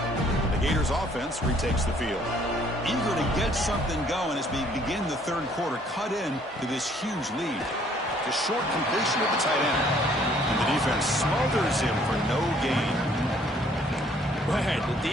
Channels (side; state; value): both; normal; correlation 0.62